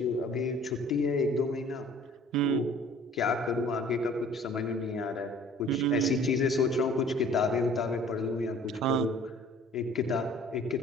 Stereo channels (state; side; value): normal; both; correlation 0.51